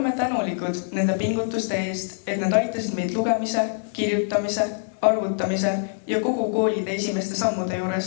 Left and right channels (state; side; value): silent; right; digital silence